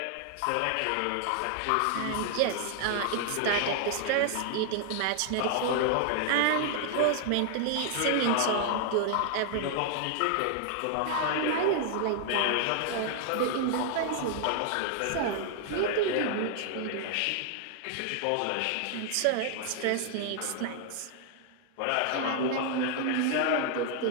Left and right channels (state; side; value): different; both; correlation 0.00